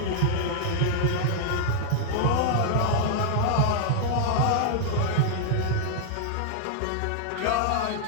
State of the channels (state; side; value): different; both; correlation 0.00